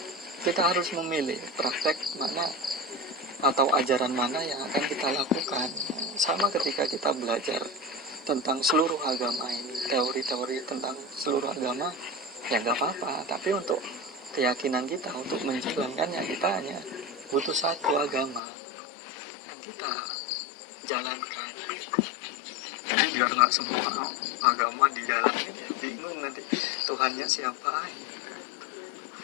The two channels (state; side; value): drops out; right; at 18.4 s